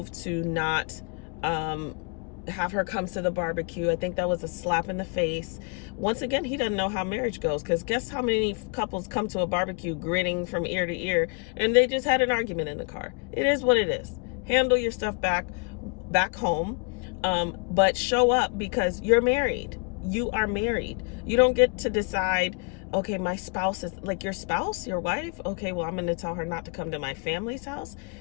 to not have her come to the barbecue. I think that was a slap in the face. Once again, he doesn't know how marriage goes, because guess how many couples come to a barbecue grinning from ear to ear, and they just had an argument in the car. It is what it is. Handle your stuff back home, but show up, because you're married. You are married. You don't get to decide, okay, my spouse is your spouse, your wife. Okay, well, I'm going to tell her not to come to my family's house.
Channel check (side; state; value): right; quieter; 34.0 dB